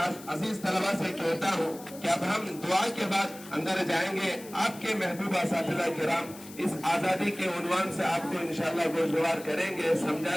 عزیز طلبہ سے کہتا ہوں کہ اب ہم دعا کے بعد اندر جائیں گے. آپ کے محبوب اساتذہ کرام اس آزادی کے عنوان سے آپ کو انشاءاللہ گوشوار کریں گے,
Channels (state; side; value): noise; left; hiss, 17 dB below the sound